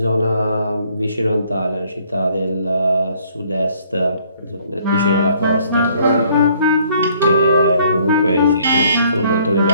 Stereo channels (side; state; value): both; inverted; correlation -0.62